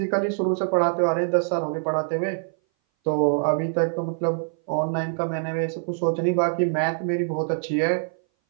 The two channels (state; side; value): silent; left; 59 dB below the other